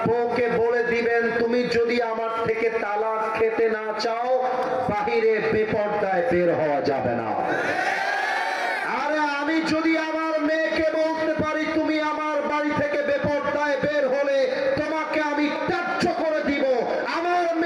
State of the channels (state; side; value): identical; both; correlation 1.00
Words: বউকে বলে দিবেন, তুমি যদি আমার থেকে তালাক খেতে না চাও, বাহিরে বেপরদায় বের হওয়া যাবে না। আরে আমি যদি আমার মেয়েকে বলতে পারি তুমি আমার বাড়ি থেকে বেপরদায় বের হলে তোমাকে আমি ত্যায্য করে দিব, আমার